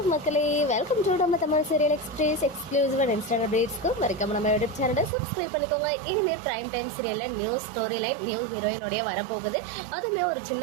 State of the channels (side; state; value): left; drops out; at 5.1 s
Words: மக்களே, வெல்கம் டு நம்ம Tamil serial express exclusive and instant அப்டேட்ஸ்க்கு மறக்காம நம்ம யூடியூப் சேனலை சப்ஸ்கிரைப் பண்ணிக்கோங்க. இனிமே பிரைம் டைம் சீரியலில் நியூ ஸ்டோரி லைன் நியூ ஹீரோயினோடைய வரப்போகுது. அதுவுமே ஒரு